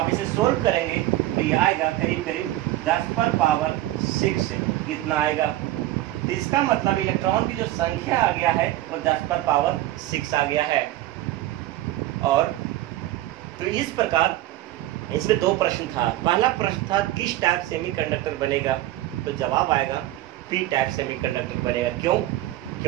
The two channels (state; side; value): quieter; left; 15.6 dB